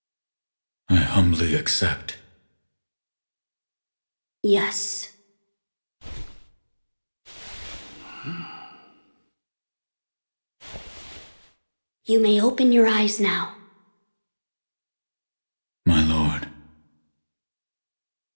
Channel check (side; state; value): both; inverted; correlation -1.00